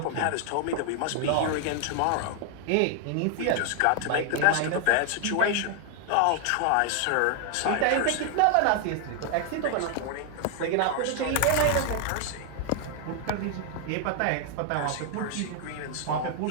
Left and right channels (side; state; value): both; different; correlation 0.00